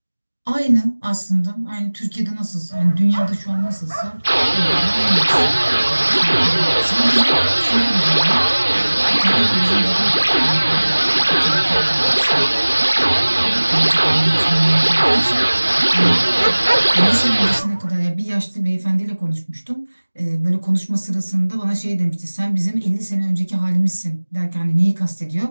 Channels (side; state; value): both; inverted; correlation -1.00